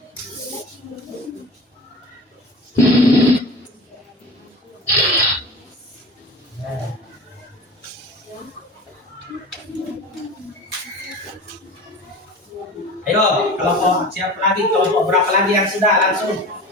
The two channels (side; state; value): both; normal; correlation 0.34